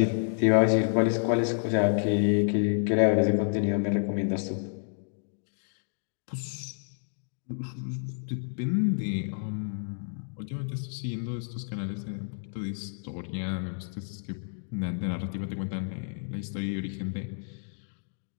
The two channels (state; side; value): silent; right; digital silence